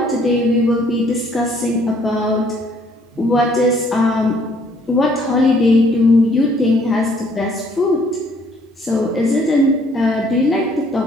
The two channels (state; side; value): normal; both; correlation 0.62